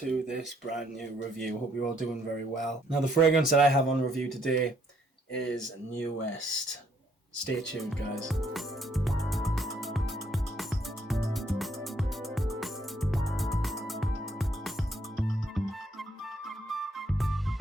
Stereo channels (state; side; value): normal; both; correlation 0.69